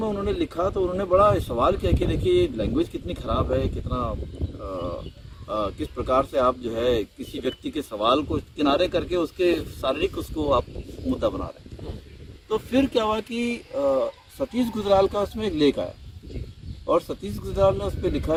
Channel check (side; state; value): both; identical; correlation 1.00